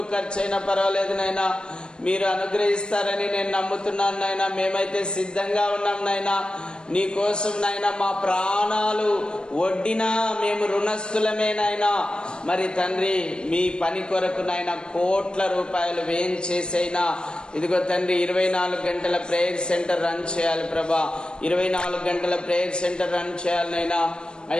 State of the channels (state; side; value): late; right; 0.051 ms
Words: ఖర్చు అయినా పర్వాలేదు నైనా, మీరు అనుగ్రహిస్తారని నేను నమ్ముతున్నాను నైనా. మేమైతే సిద్ధంగా ఉన్నాం నైనా. నీకోసం నైనా మా ప్రాణాలు వడ్డినా మేము రుణస్థులమేనైనా. మరి తండ్రి మీ పని కొరకు నైనా కోట్ల రూపాయలు వ్యయం చేసైనా ఇదిగో తండ్రి 24 గంటల ప్రేయర్ సెంటర్ రన్ చేయాలి ప్రభా. 24 గంటల ప్రేయర్ సెంటర్ రన్ చేయాలనైనా.